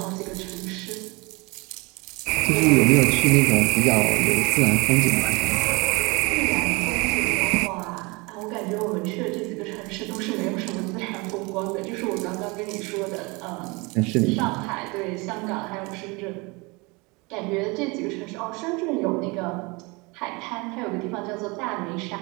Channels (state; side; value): quieter; left; 26.7 dB